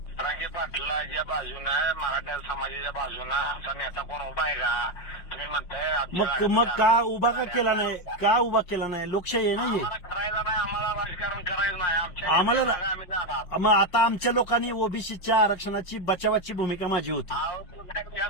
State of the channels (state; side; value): late; right; 5.6 ms